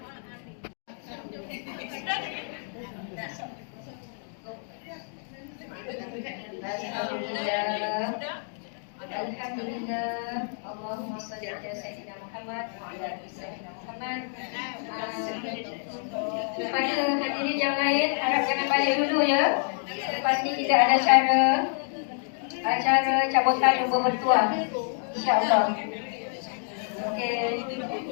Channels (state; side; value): silent; right; 59 dB below the other